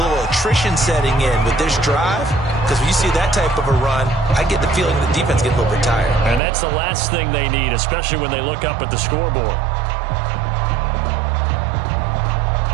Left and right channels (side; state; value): left; drops out; at 6.4 s